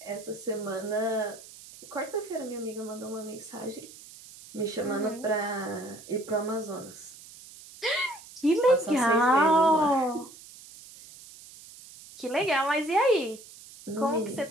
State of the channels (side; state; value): right; noise; hiss, 18 dB below the sound